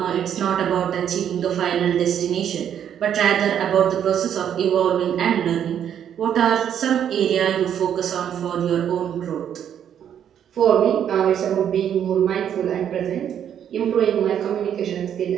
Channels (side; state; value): left; quieter; 9.3 dB